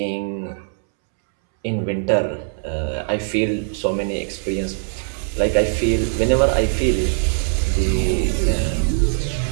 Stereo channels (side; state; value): left; silent; 65 dB below the other